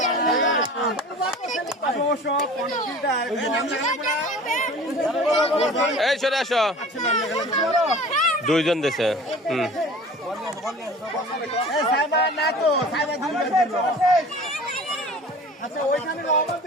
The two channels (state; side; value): normal; both; correlation 0.42